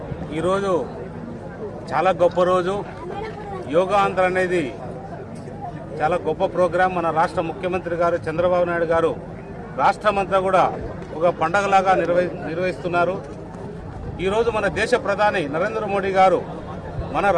ఈరోజు చాలా గొప్ప రోజు. యోగా ఆంధ్ర అనేది చాలా గొప్ప ప్రోగ్రాం. మన రాష్ట్ర ముఖ్యమంత్రి గారు చంద్రబాబు నాయుడు గారు రాష్ట్రమంతా కూడా ఒక పండగలాగా నిర్వహిస్తున్నారు. ఈరోజు మన దేశ ప్రధాని నరేంద్ర మోడీ గారు మన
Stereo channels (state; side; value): identical; both; correlation 1.00